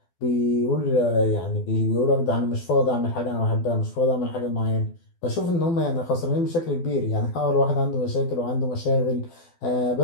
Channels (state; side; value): late; right; 12 ms